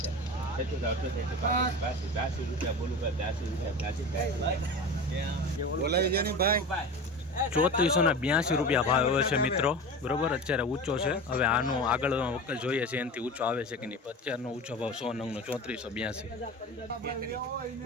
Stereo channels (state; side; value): normal; both; correlation 0.31